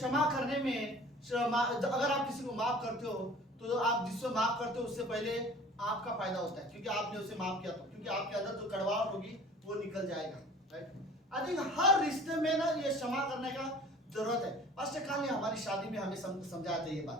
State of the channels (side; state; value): both; normal; correlation 0.46